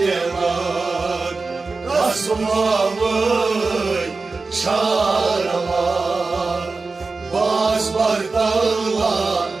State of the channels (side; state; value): left; quieter; 4.0 dB